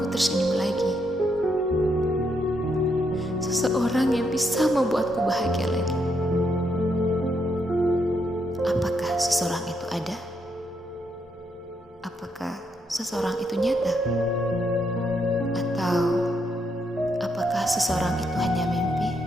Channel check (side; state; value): both; normal; correlation 0.77